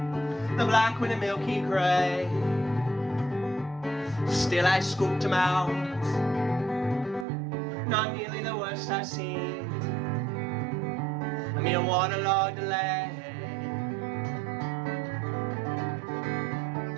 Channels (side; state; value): left; drops out; at 7.2 s